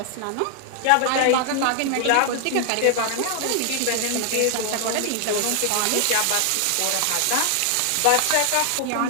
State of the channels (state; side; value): different; both; correlation 0.00